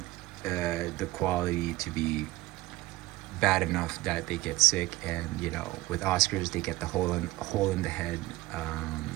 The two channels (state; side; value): quieter; left; 19.0 dB